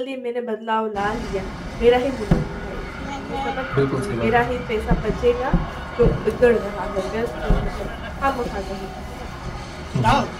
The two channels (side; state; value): both; identical; correlation 1.00